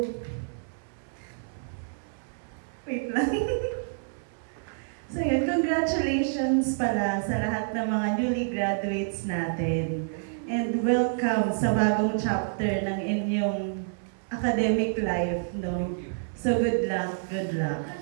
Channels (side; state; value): left; silent; 59 dB below the other